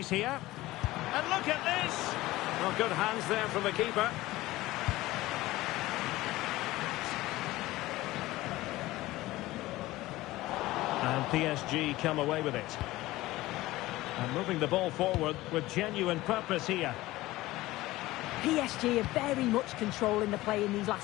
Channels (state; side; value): quieter; right; 17.9 dB